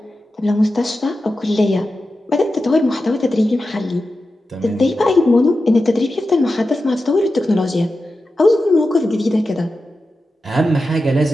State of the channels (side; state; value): both; normal; correlation 0.92